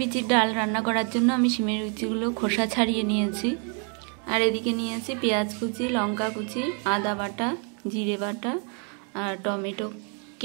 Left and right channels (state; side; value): quieter; left; 39.2 dB